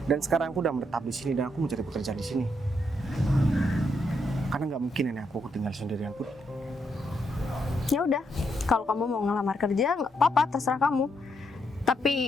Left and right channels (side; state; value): both; normal; correlation 0.78